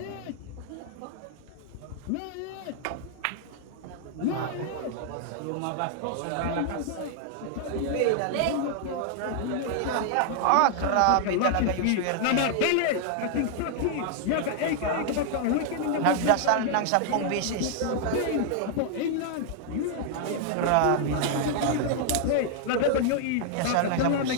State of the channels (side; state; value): both; different; correlation 0.00